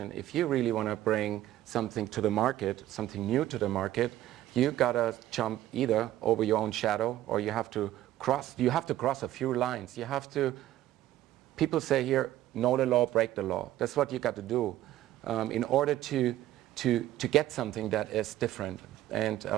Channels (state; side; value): quieter; left; 13.8 dB